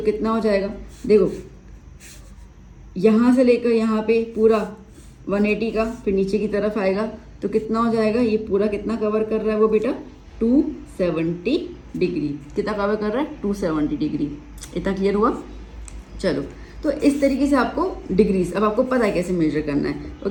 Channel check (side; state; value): both; identical; correlation 1.00